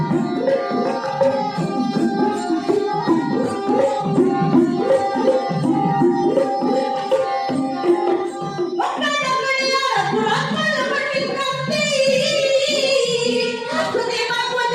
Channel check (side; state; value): both; identical; correlation 1.00